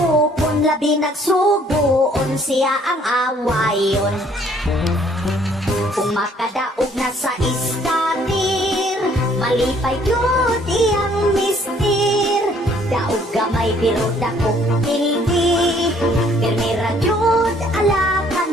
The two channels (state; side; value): normal; both; correlation 0.61